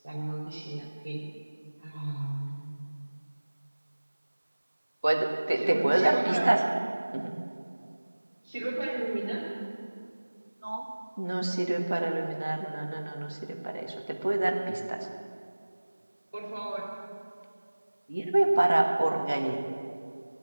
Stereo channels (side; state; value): both; inverted; correlation -1.00